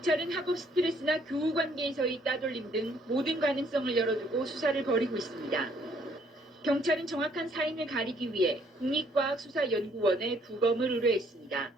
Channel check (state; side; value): normal; both; correlation 0.65